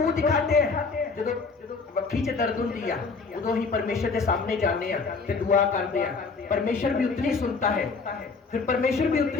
दिखाते हैं? जो वक्की च दर्द होती है उदो ही परमेश्वर के सामने जाने ते दुआ करते हैं। परमेश्वर भी उतनी सुनता है, फिर परमेश्वर भी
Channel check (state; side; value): quieter; right; 4.5 dB